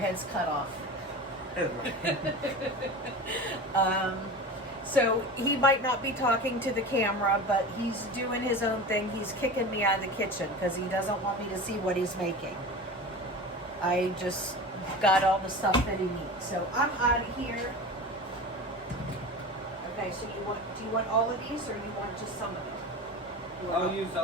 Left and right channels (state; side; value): normal; both; correlation 0.31